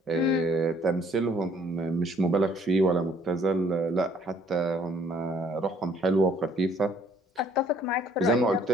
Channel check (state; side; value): normal; both; correlation 0.61